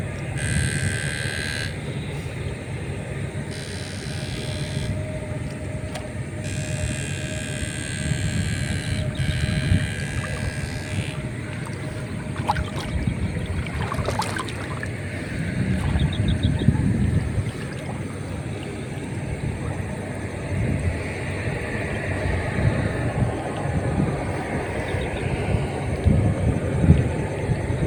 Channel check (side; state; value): both; identical; correlation 1.00